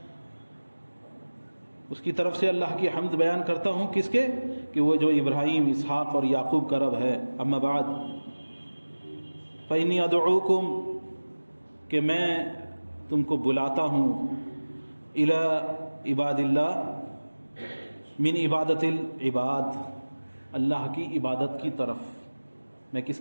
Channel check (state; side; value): inverted; both; correlation -1.00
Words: اس کی طرف سے اللہ کی حمد بیان کرتا ہوں، کس کے؟ کہ وہ جو ابراہیم، اسحاق اور یعقوب کا رب ہے۔ اما بعد فإنی ادعوکم، کہ میں تم کو بلاتا ہوں، الی عباد اللہ، من عبادت العباد، اللہ کی عبادت کی طرف۔ میں کس